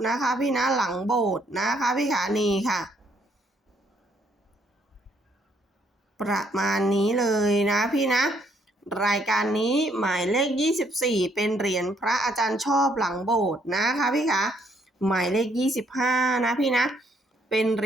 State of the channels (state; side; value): normal; both; correlation 0.69